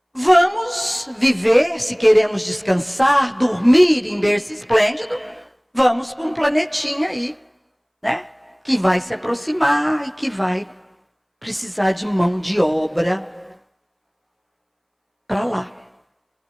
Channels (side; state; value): both; identical; correlation 1.00